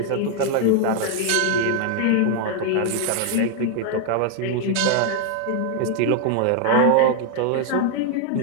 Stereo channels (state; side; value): different; both; correlation 0.00